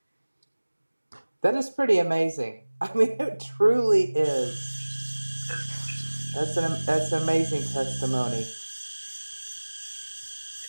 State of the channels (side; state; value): both; inverted; correlation -1.00